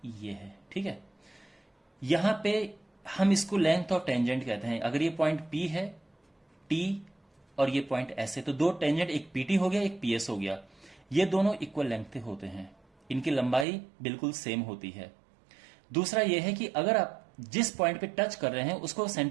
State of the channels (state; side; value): drops out; left; at 13.7 s